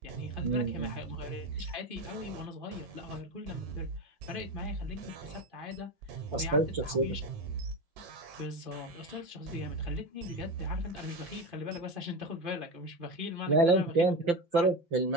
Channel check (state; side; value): late; left; 5.8 ms